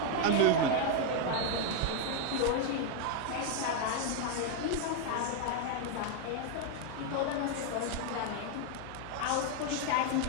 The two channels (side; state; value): both; different; correlation 0.01